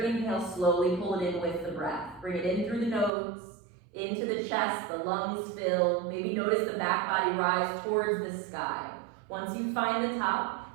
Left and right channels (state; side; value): drops out; left; at 3.1 s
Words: inhale, slowly pull it in with the breath. Bring it in through the nose, into the chest, the lungs fill. Maybe notice the back body rise towards the sky. Once you find the